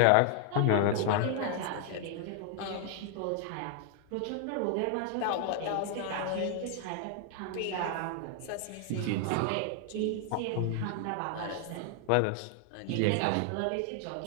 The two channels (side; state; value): both; different; correlation 0.00